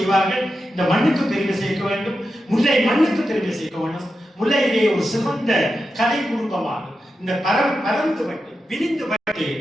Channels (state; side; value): normal; both; correlation 0.89